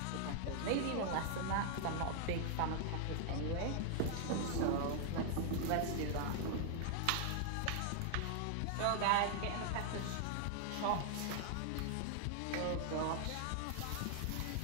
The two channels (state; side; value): different; both; correlation 0.00